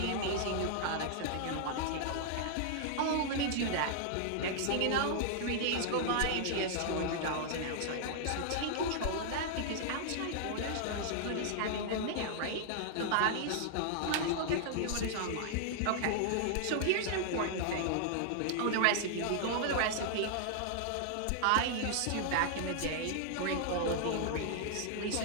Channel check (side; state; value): both; different; correlation -0.01